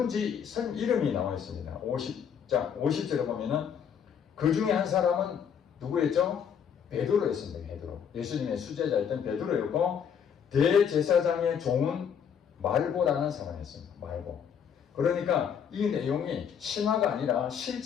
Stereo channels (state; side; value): quieter; right; 7.7 dB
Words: 이름이 나와 있습니다. 50절에 보면은 그 중에 한 사람은 누구였죠? 베드로였습니다. 베드로. 예수님의 수제자였던 베드로였고 대제사장의 종은 말고라는 사람이었습니다. 말고. 그러니까 이 내용이 신화가 아니라